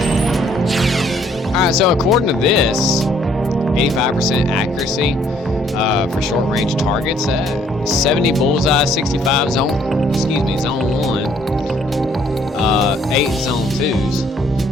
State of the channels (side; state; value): both; normal; correlation 0.64